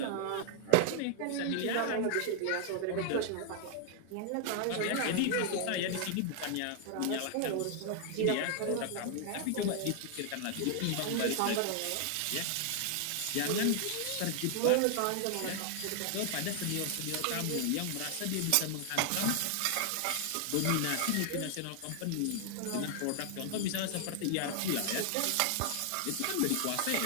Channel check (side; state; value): both; different; correlation 0.00